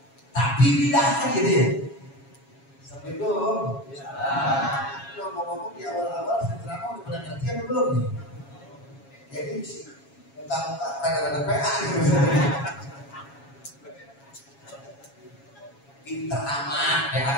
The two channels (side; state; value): right; late; 7.3 ms